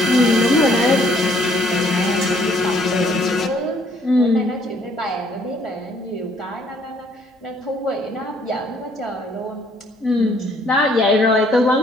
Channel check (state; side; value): normal; both; correlation 0.64